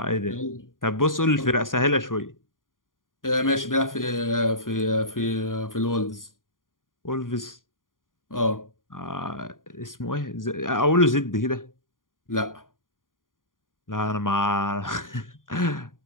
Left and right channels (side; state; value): right; late; 0.89 ms